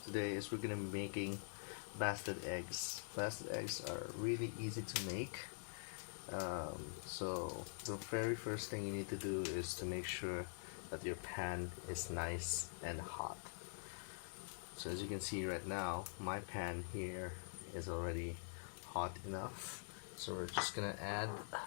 today is we're gonna be making basted eggs. Basted eggs are really easy to make. So the very first thing you need to do is to make sure that your pan is nice and hot. So as you can see right now, my pan here is already hot enough. So we're just gonna add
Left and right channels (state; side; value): silent; right; digital silence